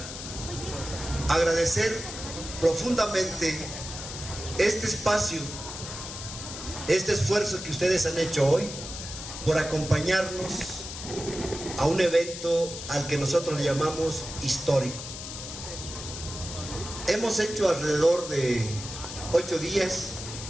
agradecer profundamente este espacio, este esfuerzo que ustedes han hecho hoy por acompañarnos a un evento al que nosotros le llamamos histórico. Hemos hecho alrededor de 8 días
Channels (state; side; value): noise; left; hiss, 9 dB below the sound